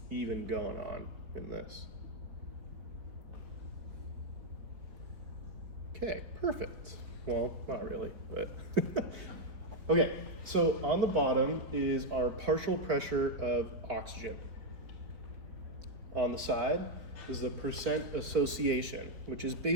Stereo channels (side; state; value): left; late; 4.2 ms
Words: even going on in this? Okay, perfect. Well, not really, but okay, so on the bottom is our partial pressure of oxygen. On the side is the percent association, which is